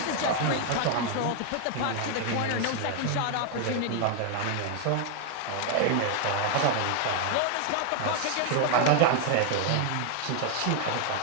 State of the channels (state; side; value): different; both; correlation 0.00